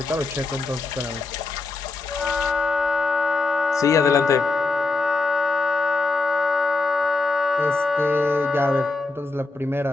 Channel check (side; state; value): right; quieter; 3.6 dB